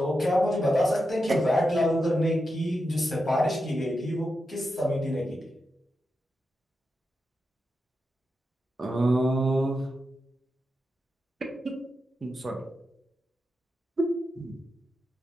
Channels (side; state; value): both; normal; correlation 0.88